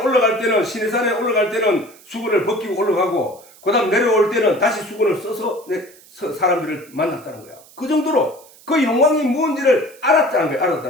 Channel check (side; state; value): right; noise; hiss, 24 dB below the sound